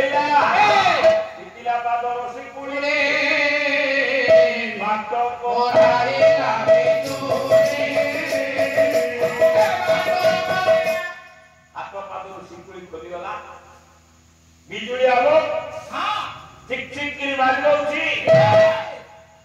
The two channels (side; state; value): both; identical; correlation 1.00